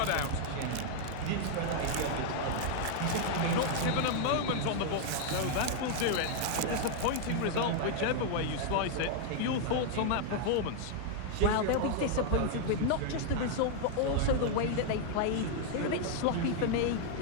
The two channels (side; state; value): both; different; correlation 0.00